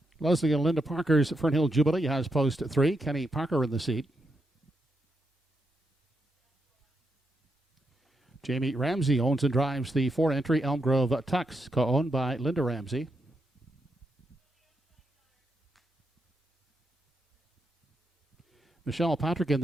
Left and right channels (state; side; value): normal; both; correlation 0.83